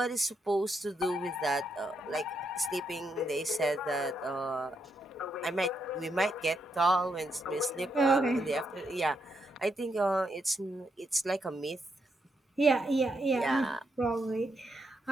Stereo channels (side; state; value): both; normal; correlation 0.79